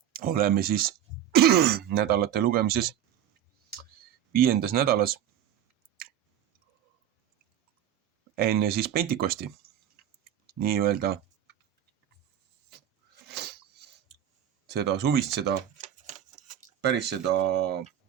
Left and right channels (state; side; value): quieter; left; 10.2 dB